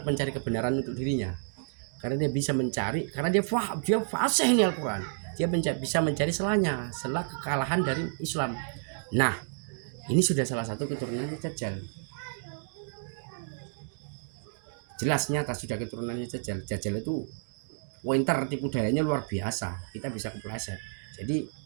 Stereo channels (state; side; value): silent; left; digital silence